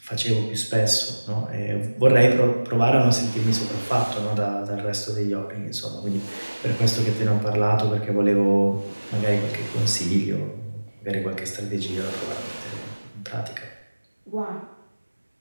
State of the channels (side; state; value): both; inverted; correlation -1.00